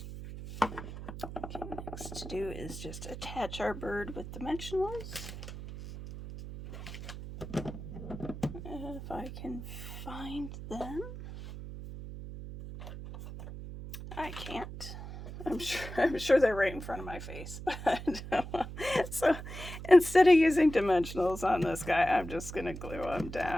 Okay, next to do is just attach our bird with dimensionals. If I can find them. I can't. I'm sure they're right in front of my face. But so instead of using dimensionals on this guy, I'm just going to glue them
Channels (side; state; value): right; noise; hum, 10 dB below the sound